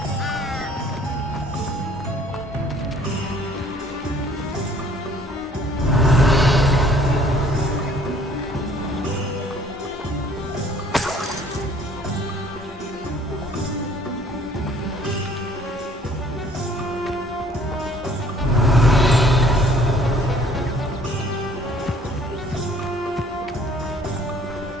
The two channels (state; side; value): normal; both; correlation 0.57